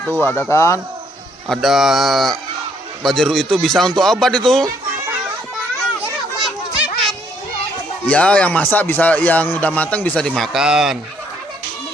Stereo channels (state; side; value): normal; both; correlation 0.68